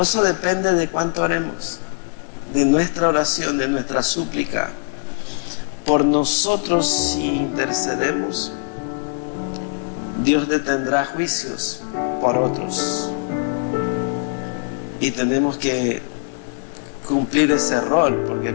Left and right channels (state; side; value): silent; right; digital silence